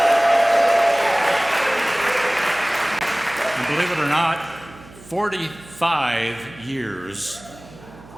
And believe it or not, 45 years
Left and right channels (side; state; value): right; noise; hum, 21 dB below the sound